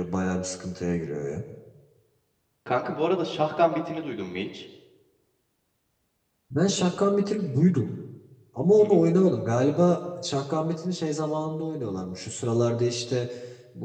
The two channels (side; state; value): both; identical; correlation 1.00